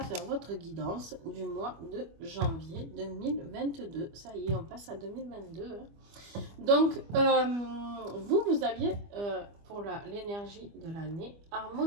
votre guidance du mois de janvier 2022. Ça y est, on passe à 2022. Donc, vous aviez pour l'énergie de l'année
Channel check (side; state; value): left; late; 25 ms